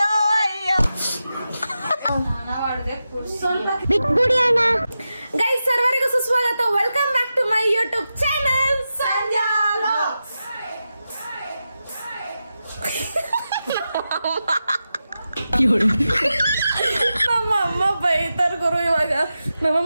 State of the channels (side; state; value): both; inverted; correlation -0.91